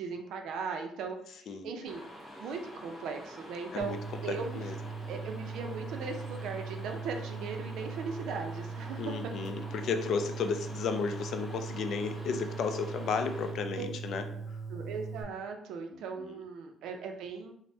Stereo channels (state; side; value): normal; both; correlation 0.59